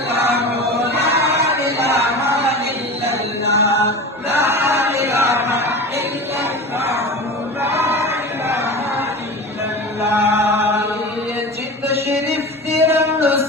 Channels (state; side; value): normal; both; correlation 0.31